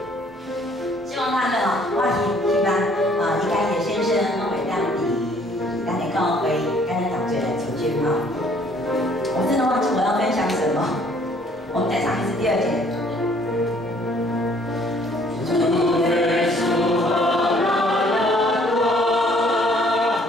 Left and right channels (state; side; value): normal; both; correlation 0.60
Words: 希望他们哦，我希望应该也先生我会让你咱的教会跟咱同学来组织哈。我真的忘记我要分享什么，我们再唱一次第2节。